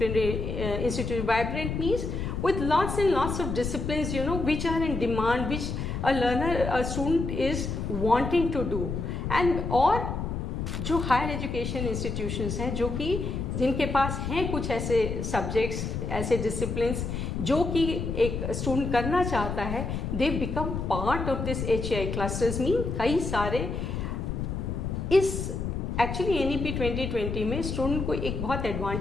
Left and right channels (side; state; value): left; noise; rumble, 3 dB below the sound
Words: institute. Vibrant means with lots and lots of disciplines, which are in demand, which a student is wanting to do. And और जो higher education institutions हैं, जो कि जिनके पास हैं कुछ ऐसे सब्जेक्ट्स, ऐसे डिसिप्लिन्स जो कि एक स्टूडेंट करना चाहता है, they become part of this HEI clusters. Mean कई सारे इस एक्चुअली NEP 2020 में स्टूडेंट को एक बहुत